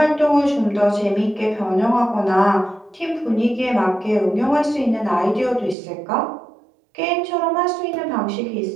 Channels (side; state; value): left; drops out; at 5.8 s